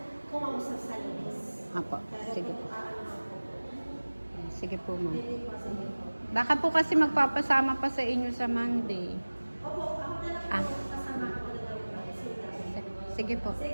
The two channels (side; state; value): both; inverted; correlation -1.00